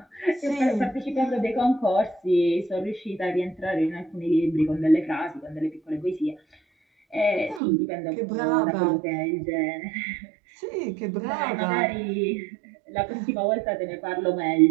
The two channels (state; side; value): drops out; left; at 7.6 s